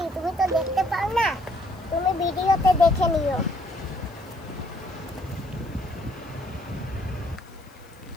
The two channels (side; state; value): left; noise; hiss, 29 dB below the sound